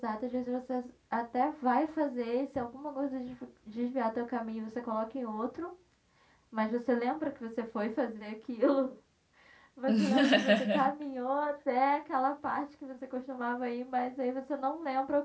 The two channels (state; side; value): identical; both; correlation 1.00